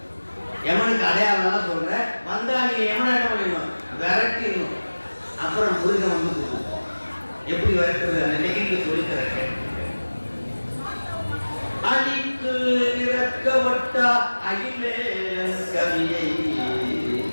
யமனுக்கு அடையாளம் சொல்றேன். வந்தா நீங்க யமனை என்ன பண்ணிடணும்? விரட்டிடணும். அப்புறம் முருகன் வந்து எப்படி விரட்டுறது அந்த நெகிழ்ச்சி சொல்லித்தரேன். அழித்து இறக்கவட்டா அகிலே கவியை,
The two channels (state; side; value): inverted; both; correlation -1.00